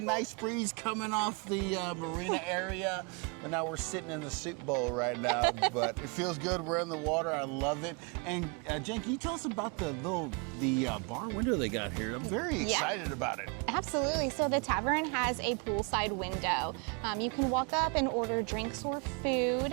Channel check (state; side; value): quieter; left; 33.9 dB